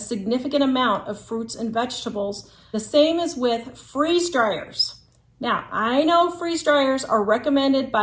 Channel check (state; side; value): identical; both; correlation 1.00